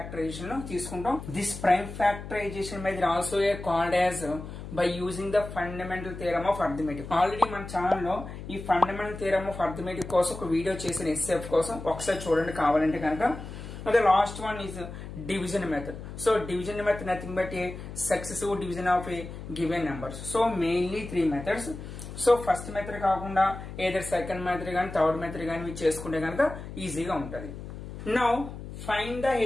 లో తీసుకుంటాం. This prime factorization method also called as by using the fundamental theorem of arithmetic. Already మన channel లో ఈ fundamental theorem of arithmetic కోసం ఒక వీడియో చేసిన HCF కోసం ఒకసారి చూడండి కావాలంటే కనుక. The last one is division method. So division method nothing but a successive division of a given numbers. So mainly three methods. So first method కాకుండా either second method గాని third method గాని చేసుకుంటే కనుక ఈజీగా ఉంటది. Now find the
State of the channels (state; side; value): noise; left; hum, 11 dB below the sound